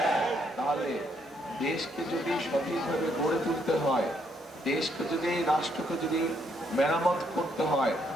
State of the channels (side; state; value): both; normal; correlation 0.73